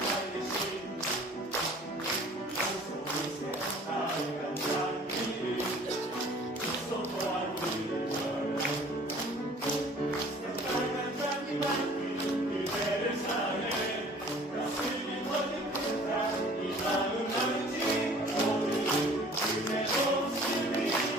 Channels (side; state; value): both; normal; correlation 0.50